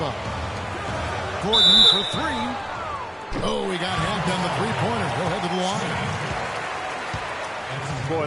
Gordon for 3. Oh, he got hacked on the three-pointer. He'll head to the line. Boy,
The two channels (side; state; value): both; identical; correlation 1.00